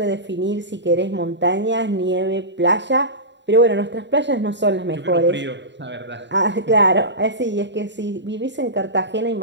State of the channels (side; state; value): left; late; 0.52 ms